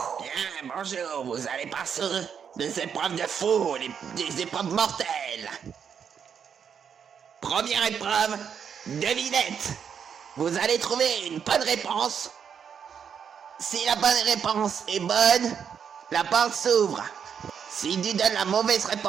bonjour, vous allez passer des épreuves de fou, des épreuves mortelles. Première épreuve, devinette. Vous allez trouver une bonne réponse. Si la bonne réponse est bonne, la porte s'ouvre. Si tu donnes la mauvaise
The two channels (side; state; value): left; quieter; 7.4 dB